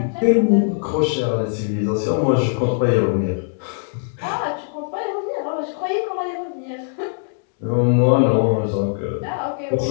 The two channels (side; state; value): right; silent; digital silence